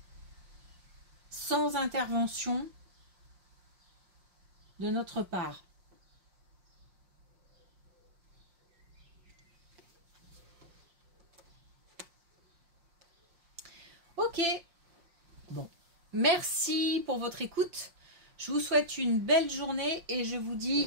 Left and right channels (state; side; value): late; left; 5.6 ms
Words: sans intervention de notre part. Ok, bon, merci pour votre écoute. Je vous souhaite une belle journée et je vous